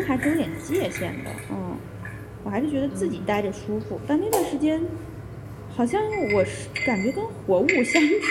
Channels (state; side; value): identical; both; correlation 1.00